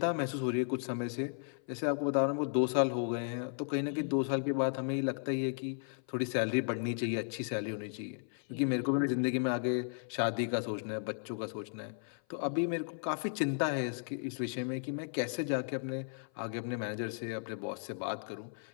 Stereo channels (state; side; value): silent; right; 54 dB below the other